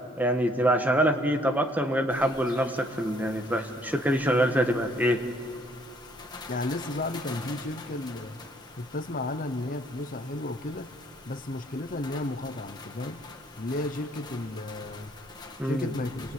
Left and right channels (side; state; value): both; normal; correlation 0.64